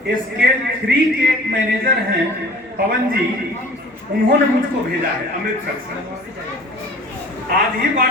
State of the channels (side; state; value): both; normal; correlation 0.45